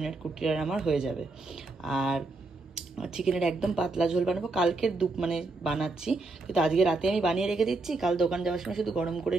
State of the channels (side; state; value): left; quieter; 3.3 dB